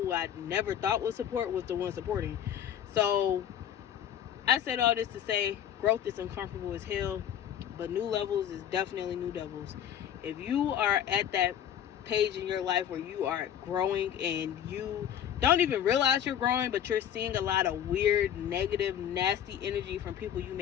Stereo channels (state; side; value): quieter; right; 9.9 dB